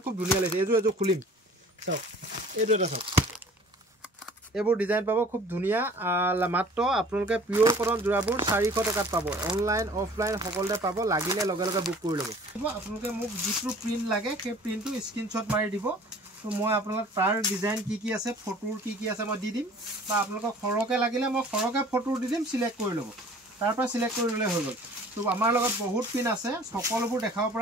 খুব ধুনিয়া লাগিছে এজো খুলিম চাওক এইটো এটা চাওক এবোৰ ডিজাইন পাব খুব ধুনিয়া মাত্ৰ আপোনালোকে পিওৰ কটন জোৰাবোৰ 400 টাকাত পাব অনলাইন অফলাইন সকলোতে পাব লাগিলে লগে লগে বুক কৰি লব আপোনালোকে মোক যিটো প্ৰিন্ট লাগে সেই প্ৰিন্টটো স্ক্ৰিনশ্বট মাৰি দিব তো মই আপোনালোক তাৰ ডিজাইন কি আছে ফটোৰ কি আছে মই দি দিম বা আপোনালোকক খৰকে লাগিলে মই খৰকে ফটো দি দিম সিলেক্ট কৰি লব তাৰ পৰা সিলেক্ট কৰি ললে হৈ গল তো আমাৰ লগত বহুত পিন আছে সকলোবোৰ দেখাব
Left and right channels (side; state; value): both; normal; correlation 0.49